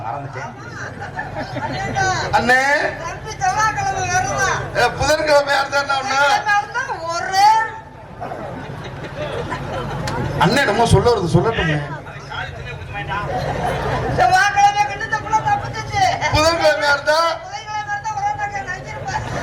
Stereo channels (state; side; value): identical; both; correlation 1.00